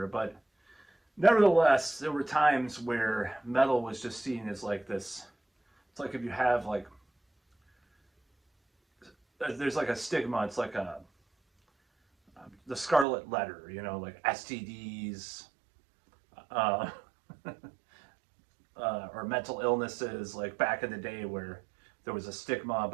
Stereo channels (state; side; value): drops out; left; at 13.1 s